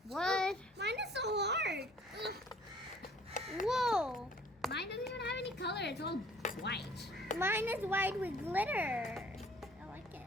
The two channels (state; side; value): normal; both; correlation 0.55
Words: What? Mine is so hard. Ugh. Whoa! Mine doesn't even have any color. It's all white. Mine is white with glitter. I like it.